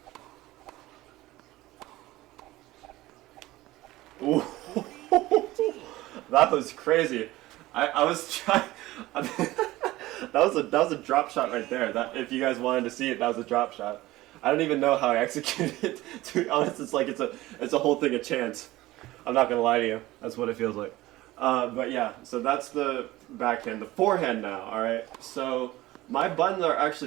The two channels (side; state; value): left; quieter; 17.7 dB